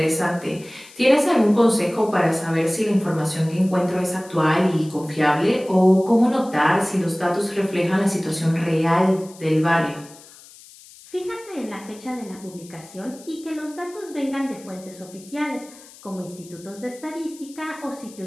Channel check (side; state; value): left; noise; hiss, 21 dB below the sound